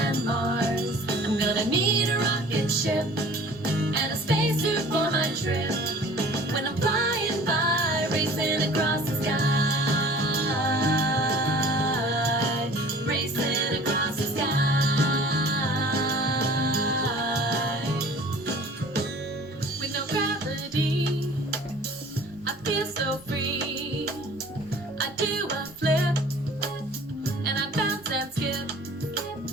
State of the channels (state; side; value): normal; both; correlation 0.47